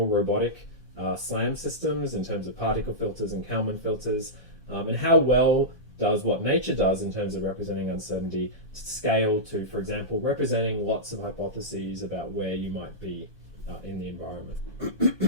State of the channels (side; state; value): both; normal; correlation -0.14